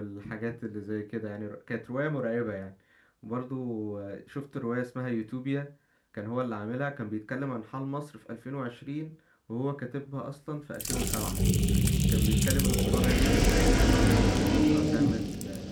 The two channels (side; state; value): both; identical; correlation 1.00